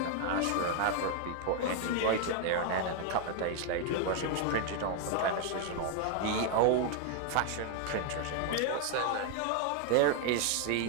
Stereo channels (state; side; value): different; both; correlation 0.00